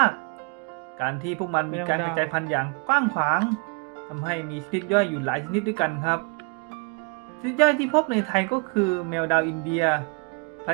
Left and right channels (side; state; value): left; quieter; 34.0 dB